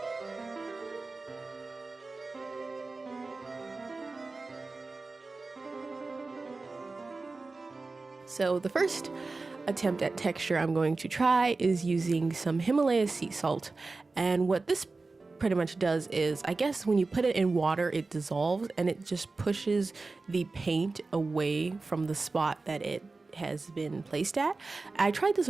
So the first attempt at texture I'm going to try is using some Himalaya sea salt. And what this pretty much does is, I guess when you put it in water, it dissolves and it just pushes the paint away from the spot that it has been placed at. I tried this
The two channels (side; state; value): left; quieter; 3.7 dB